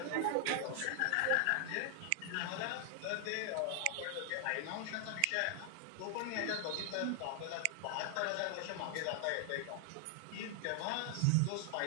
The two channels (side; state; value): both; different; correlation 0.00